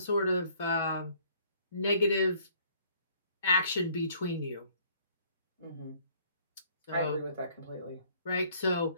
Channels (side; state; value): both; inverted; correlation -0.61